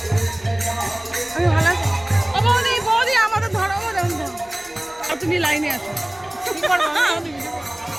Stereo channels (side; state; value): left; noise; rumble, 28 dB below the sound